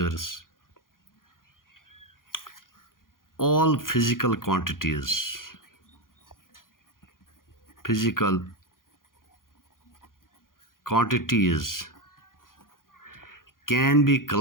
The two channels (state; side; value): late; right; 0.90 ms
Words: All physical quantities can be